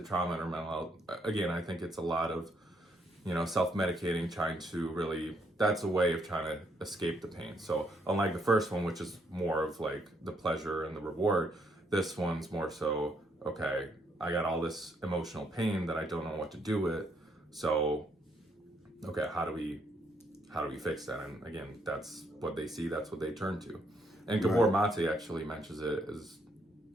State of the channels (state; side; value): normal; both; correlation 0.72